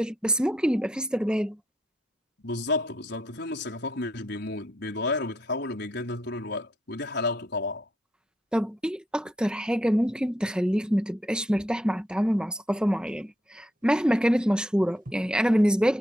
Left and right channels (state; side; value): normal; both; correlation 0.77